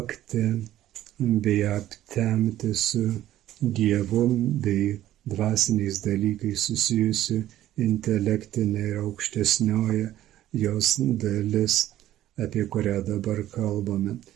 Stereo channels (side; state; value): left; quieter; 13.3 dB